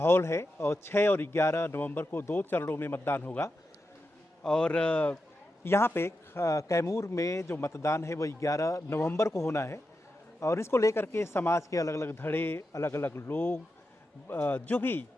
है और 6 और 11 नवंबर को 2 चरणों में मतदान होगा। और यहाँ पे कैमूर में जो मतदान है वो 11 नवंबर को होना है और इसको लेकर के समाज के अलग अलग धड़े, अलग अलग लोग जो भी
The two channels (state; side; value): normal; both; correlation 0.89